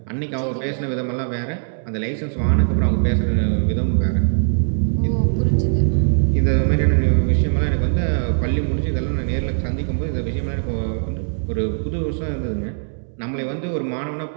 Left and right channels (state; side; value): silent; left; 65 dB below the other